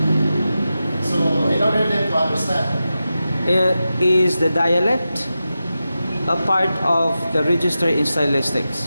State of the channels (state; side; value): inverted; both; correlation -0.92